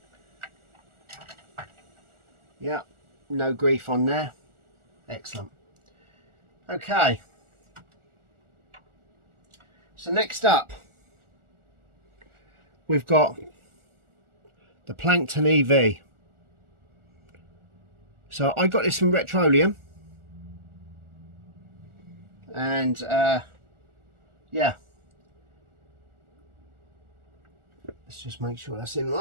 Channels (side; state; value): left; late; 1.4 ms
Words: Yeah, no grief on there. Excellent. Okay. So next up, we've got the Plankton EV. So I got this from Retroleum, and yeah, let's just make sure that's in